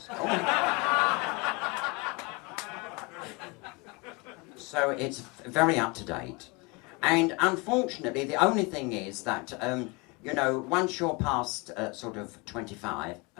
Oh. So it's very up to date. And unfortunately, the only thing is that, you know, once you're past sort of 25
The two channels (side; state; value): right; quieter; 27.4 dB